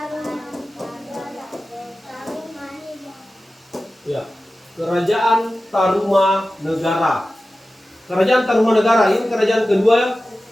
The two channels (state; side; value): normal; both; correlation 0.95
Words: ya. Kerajaan Tarumanegara. Kerajaan Tarumanegara ini kerajaan kedua